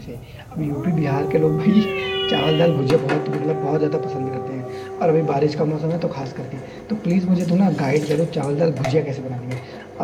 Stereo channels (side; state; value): both; identical; correlation 1.00